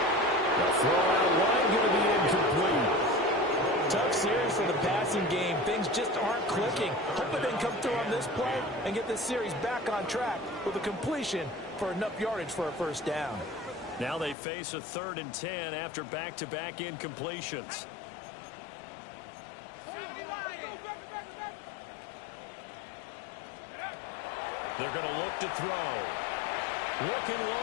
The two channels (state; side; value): drops out; right; at 14.4 s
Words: The throw out wide going to be incomplete. Tough series for the passing game. Things just aren't clicking. Hoping they can come through on this play and get this series back on track with a completion for enough yardage for a first down. Now they face a 3rd and 10 after back-to-back incompletions. They're going to look to throw. Looking